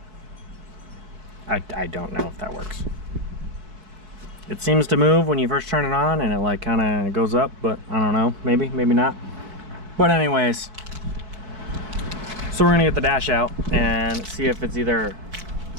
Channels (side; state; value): left; late; 4.6 ms